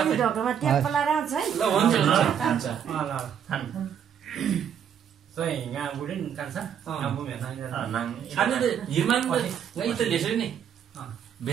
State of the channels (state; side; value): quieter; left; 8.5 dB